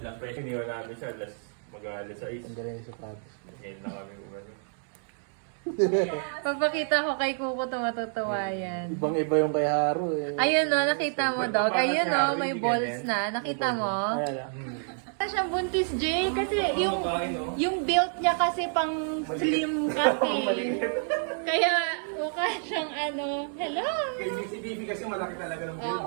lang, pero iniwan namin siya, mag-alas 6. Ang galing sa sapatos. Ngayon na kami umano. Pagpakita ko kay Kuko ito, matutuwa yan. Ibang-iba yung kay Haro eh. Ayun o, nakita mo, dog. Ayun o, may balls na. Nakita mo? Ayan. Wala siyang buntis, Jay. Kasi yung build niya kasi pang slim kasi. Kaya mukha siyang ano, hello! Si Bibi kasi malaki talaga ng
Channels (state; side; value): silent; left; 59 dB below the other